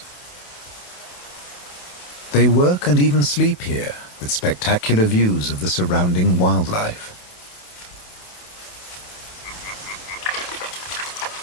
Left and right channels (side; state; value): right; late; 28 ms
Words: They work and even sleep here, with spectacular views of the surrounding wildlife.